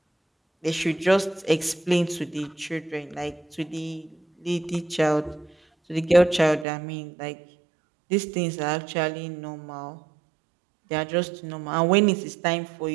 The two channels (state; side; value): drops out; left; at 6.7 s